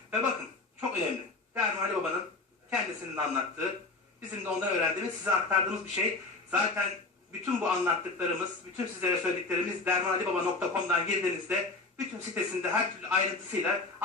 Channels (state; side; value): quieter; right; 3.5 dB